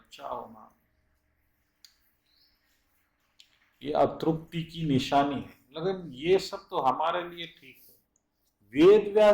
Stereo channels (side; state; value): both; identical; correlation 1.00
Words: होना। ये अतृप्ति की निशानी है। लेकिन ये सब तो हमारे लिए ठीक है, वेद